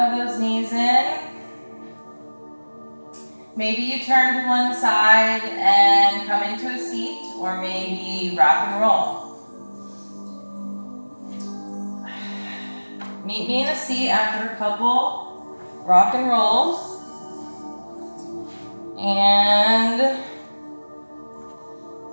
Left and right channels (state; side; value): inverted; both; correlation -1.00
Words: those knees in. Maybe you turn to one side and come into a seat, or maybe rock and roll. Meet me in a seat after a couple rock and rolls. And